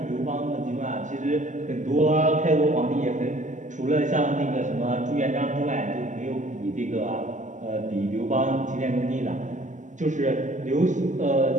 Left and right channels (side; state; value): left; late; 0.36 ms